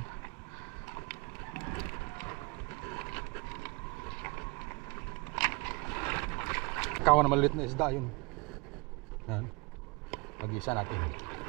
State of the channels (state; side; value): quieter; left; 28.3 dB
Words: Kawan na maliit na isda yun. Yan. Mag-isa natin.